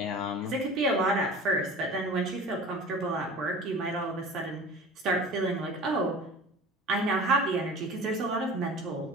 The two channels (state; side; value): normal; both; correlation 0.38